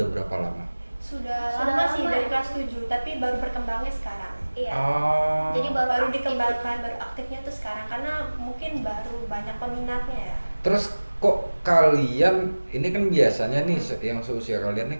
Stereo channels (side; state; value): both; inverted; correlation -1.00